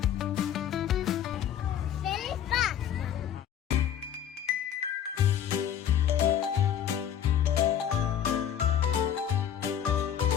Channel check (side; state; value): right; quieter; 9.6 dB